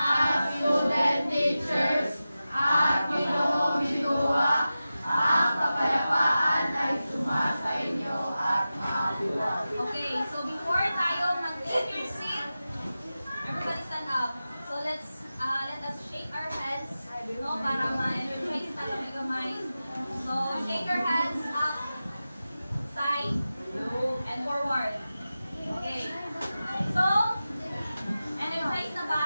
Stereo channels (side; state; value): both; inverted; correlation -0.94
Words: student teachers at Ginoong Bidua. Ang kapayapaan ay sumasa inyo at mabuhay. Okay, so before tayo mag-take your seat, everybody stand up. So let us shake our hands, no, para ma-energize tayo may kamay. So shake your hands up, side, and forward. Okay. So, energize na ba